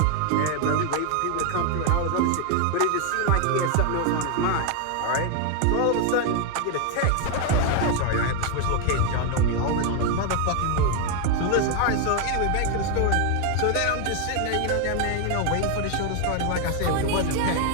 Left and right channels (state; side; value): different; both; correlation 0.01